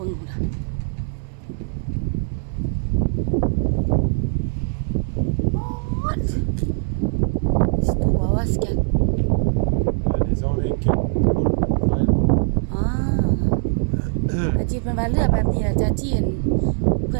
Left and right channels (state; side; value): silent; left; 65 dB below the other